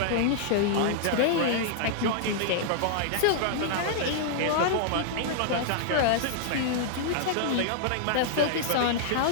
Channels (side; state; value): both; different; correlation -0.01